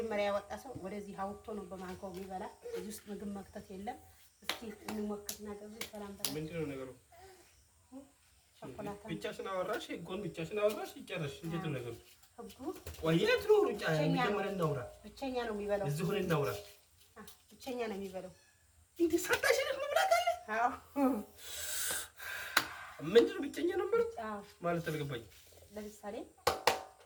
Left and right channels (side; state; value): both; identical; correlation 1.00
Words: ያወጣ ሰው ወደዚህ አውጥቶ ነው በማንካው የሚበላ። እዚህ ውስጥ ምግብ መክተት የለም። እስኪ እንሞክርና ገቡ። ሰላም በላ። ምንድነው ነገሩ? ቸኮላታ ብቻሽን አወራሽ፣ ጎን ብቻሽን አወራሽ። ይጨረሽ። እንዴት ነው ነገሩ? ህጉ ወይት ነው ሩጫ? መጀመሪያ እናውራ። ብቸኛ ነው የሚበላው። እዚህ ሆነ እናውራ። ብቸኛ ነው የሚበላው። እንዴ ሳታሽን መብላት አለ? አዎ። ምንድነው ብቸኛ ነው ማለት? አዎ ማለት አልገባኝም። ለምሳሌ